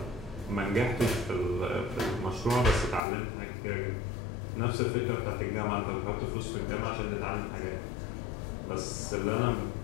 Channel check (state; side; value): drops out; right; at 3.0 s